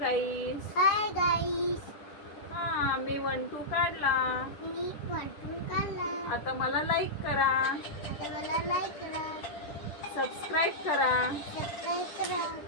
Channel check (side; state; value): right; late; 10 ms